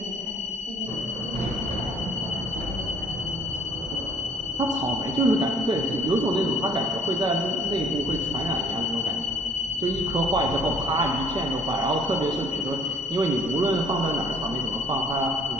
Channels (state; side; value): normal; both; correlation 0.59